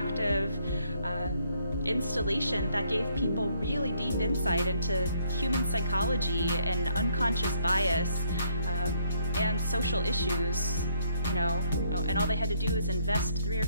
installation that gave people really deep insight into human psychology and unconscious bias and social issues, you know, and all they had to do was invest 3 or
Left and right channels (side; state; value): both; inverted; correlation -0.70